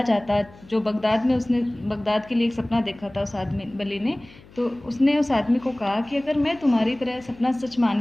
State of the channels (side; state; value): left; noise; hum, 23 dB below the sound